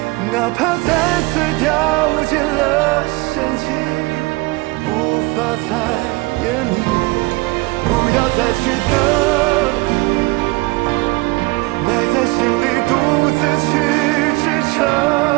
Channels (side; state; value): left; quieter; 24.1 dB